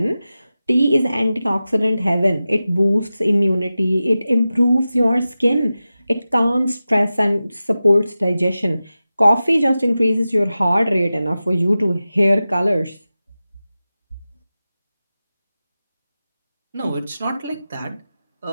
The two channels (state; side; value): inverted; both; correlation -0.94